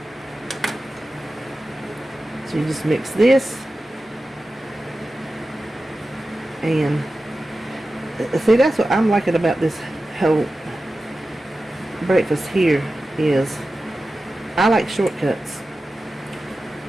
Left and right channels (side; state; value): both; normal; correlation 0.94